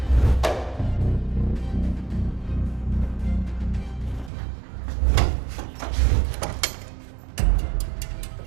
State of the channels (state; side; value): drops out; left; at 4.3 s